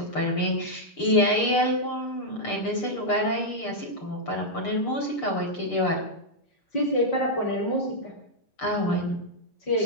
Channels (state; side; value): late; right; 6.7 ms